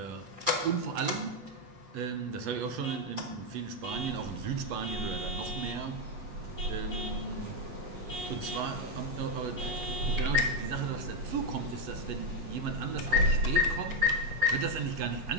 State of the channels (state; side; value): late; left; 8.2 ms